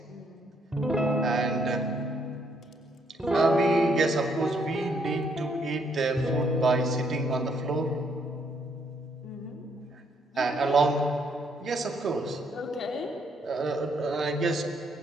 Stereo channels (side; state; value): both; normal; correlation 0.71